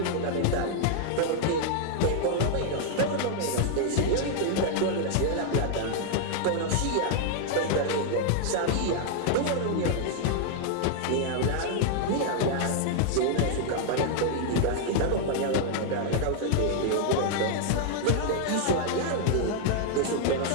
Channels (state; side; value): different; both; correlation -0.01